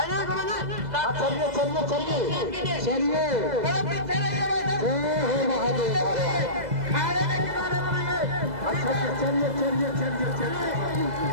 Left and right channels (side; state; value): left; late; 2.0 ms